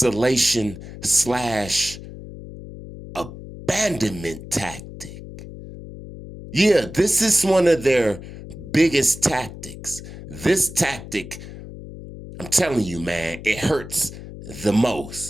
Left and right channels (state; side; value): noise; left; hum, 13 dB below the sound